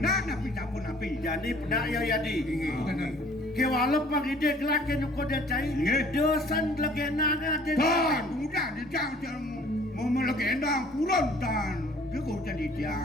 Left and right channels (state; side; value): normal; both; correlation 0.54